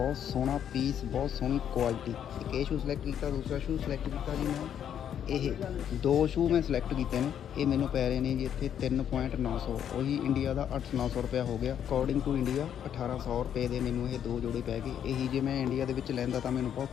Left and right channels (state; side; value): quieter; right; 9.3 dB